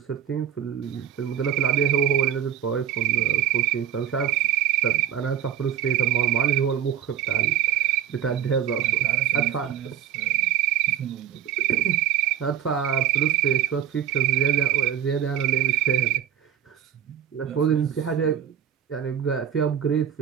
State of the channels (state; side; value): quieter; left; 9.9 dB